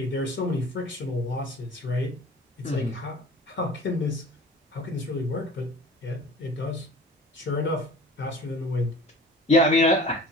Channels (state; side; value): normal; both; correlation 0.44